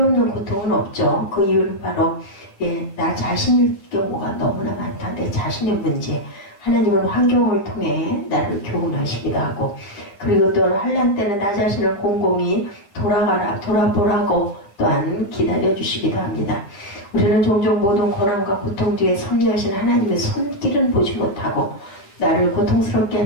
고통은 없죠. 그 이유는 바로 나 자신일 경우가 너무나 많다. 내 자신의 문제. 하나님은 환경을 통해 나를 교훈하시기도 하고, 그리고 또 환난 때는 나 자신을 곰곰이 돌아보라고 또한 기다려주시기도 합니다. 우리는 종종 모든 고난과 고통 뒤에 섭리하신 하나님의 손길은 보지 못하고 나를 고통스럽게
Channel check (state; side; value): late; right; 9.9 ms